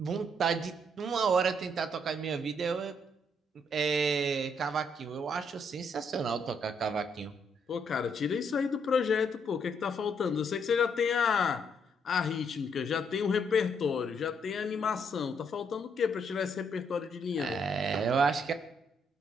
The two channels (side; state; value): both; normal; correlation 0.73